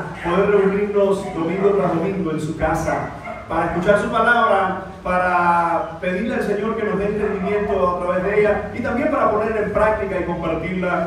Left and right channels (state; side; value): identical; both; correlation 1.00